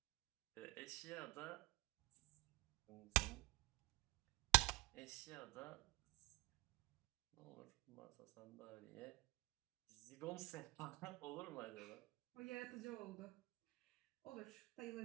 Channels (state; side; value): quieter; left; 21.9 dB